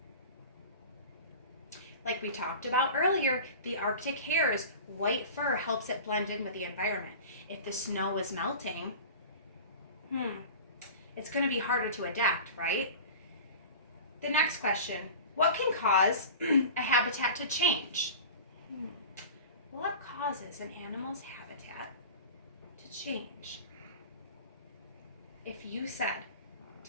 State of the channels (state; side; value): inverted; both; correlation -0.36